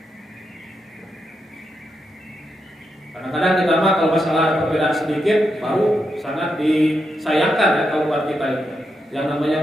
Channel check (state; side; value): normal; both; correlation 0.84